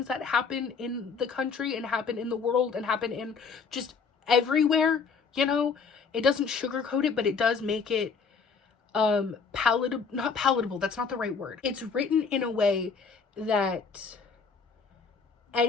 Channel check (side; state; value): right; quieter; 5.4 dB